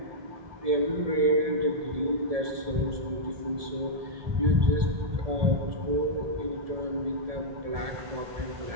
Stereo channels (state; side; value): late; left; 1.7 ms